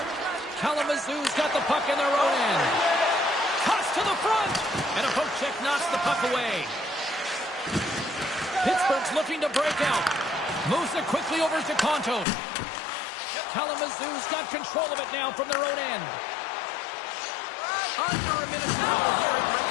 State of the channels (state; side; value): drops out; right; at 12.2 s